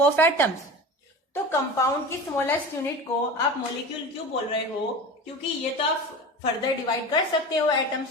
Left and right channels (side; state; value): both; normal; correlation 0.32